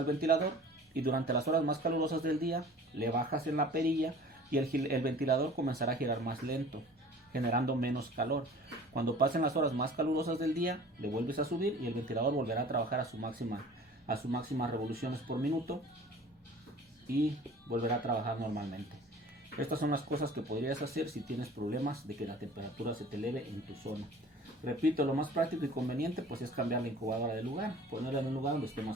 ventilador y durante las horas más calurosas del día le bajas en la perilla y el ventilador comenzará a girar más lento, generando menos calor. Cuando pasen las horas más calurosas del día, le vuelves a subir y el ventilador volverá a trabajar a su máxima revoluciones por minuto y volverá a trabajar normalmente. Estas son las cosas que podrías hacer si tienes problemas de que la temperatura se te eleve en tu zona. Repito, lo más práctico y conveniente pues es cambiar la incubadora de lugar, ponerla en un lugar donde esté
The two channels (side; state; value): both; normal; correlation 0.46